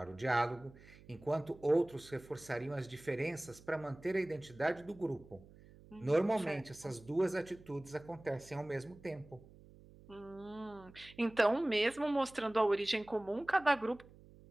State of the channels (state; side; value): noise; right; hum, 22 dB below the sound